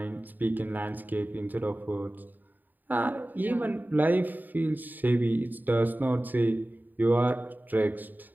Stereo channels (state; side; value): late; left; 0.088 ms